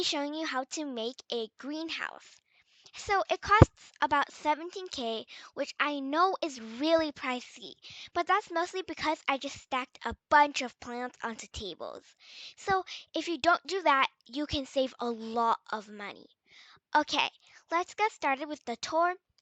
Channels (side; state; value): both; identical; correlation 1.00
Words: showing you how to make a greenhouse. So it costs about 17K, which I know is really pricey, but that's mostly because I just stacked a bunch of plants onto tables. So if you don't do that, you can save a lot of money. Okay, let's get started with the tour